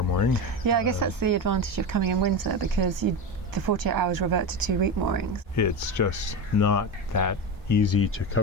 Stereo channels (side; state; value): both; normal; correlation 0.20